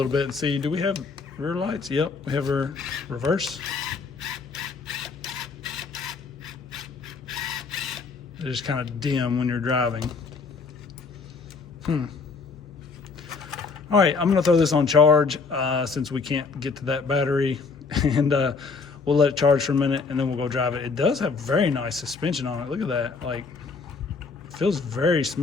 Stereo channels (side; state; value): right; quieter; 4.7 dB